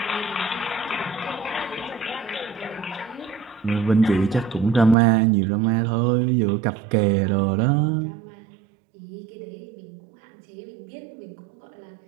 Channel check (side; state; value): left; drops out; at 5.0 s